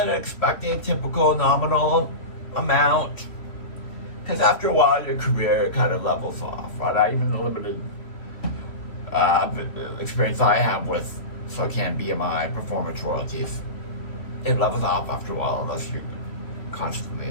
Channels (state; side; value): late; right; 3.1 ms